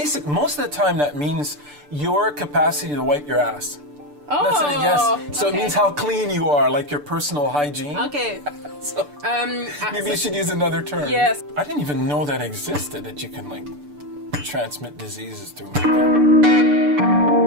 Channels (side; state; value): left; late; 6.8 ms